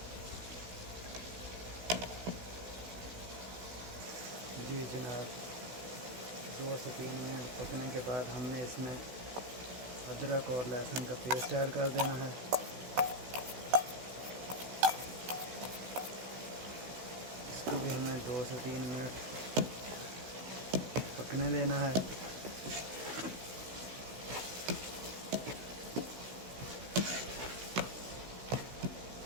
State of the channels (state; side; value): late; left; 16 ms